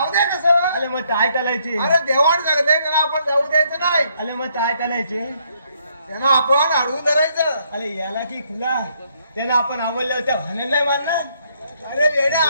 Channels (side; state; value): both; inverted; correlation -0.71